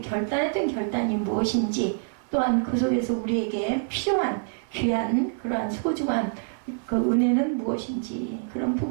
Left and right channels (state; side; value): silent; left; digital silence